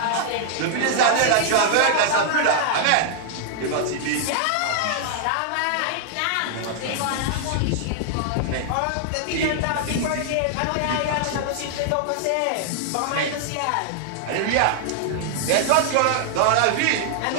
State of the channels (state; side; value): different; both; correlation -0.01